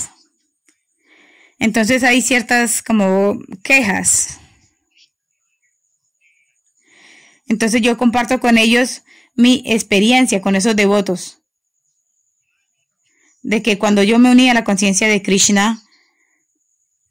Entonces hay ciertas como quejas. Entonces yo comparto con ellos mi experiencia con esos devotos. De que cuando yo me uní a la conciencia de Krishna,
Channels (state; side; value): identical; both; correlation 1.00